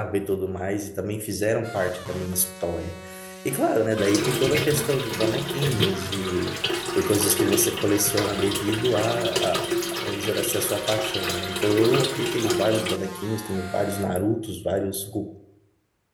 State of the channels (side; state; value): both; identical; correlation 1.00